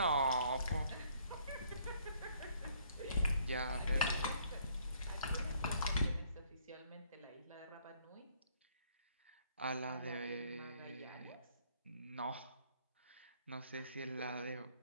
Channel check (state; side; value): inverted; both; correlation -0.63